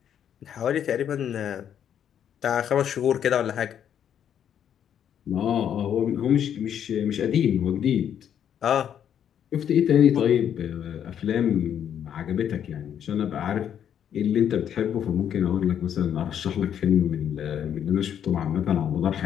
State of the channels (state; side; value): quieter; right; 9.2 dB